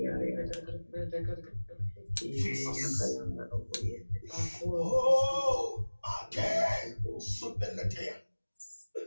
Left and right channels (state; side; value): inverted; both; correlation -1.00